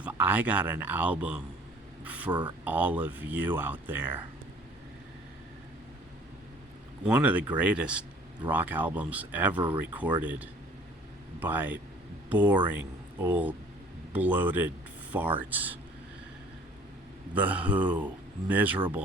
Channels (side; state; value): both; normal; correlation 0.53